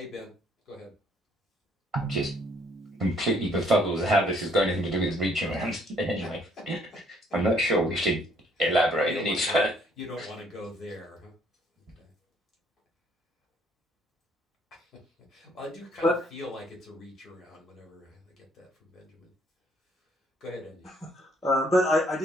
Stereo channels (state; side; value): normal; both; correlation 0.64